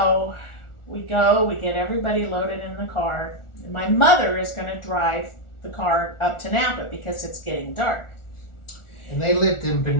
we get everybody loaded in the car, and my mother is going to drive the car up to Napa because it's getting dark. And they lived in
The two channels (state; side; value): late; right; 1.4 ms